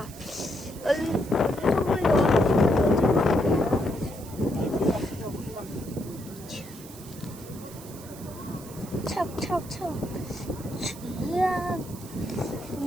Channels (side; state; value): right; noise; hiss, 17 dB below the sound